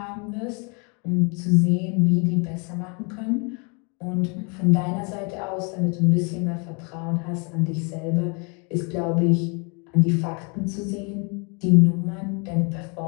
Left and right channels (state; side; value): quieter; right; 33.5 dB